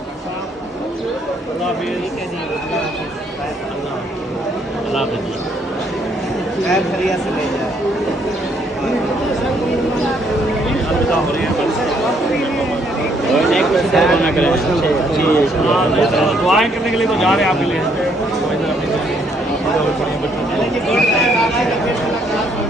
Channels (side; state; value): both; normal; correlation 0.69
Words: दुआएं करने के लिए तो जा रहे हैं आपके लिए।